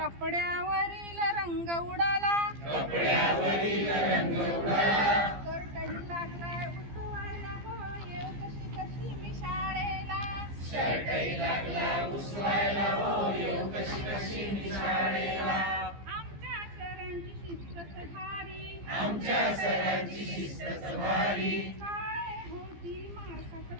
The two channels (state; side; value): late; left; 15 ms